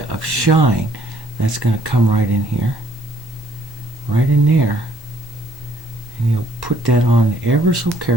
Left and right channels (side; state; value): both; normal; correlation 0.63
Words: of shine that's going to come right in here, right in there. And you'll put that on ever so